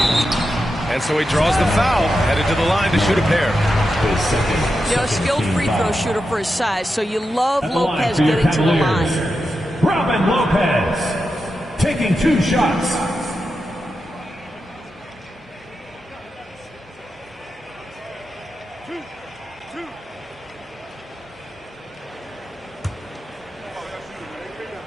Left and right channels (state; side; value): normal; both; correlation 0.89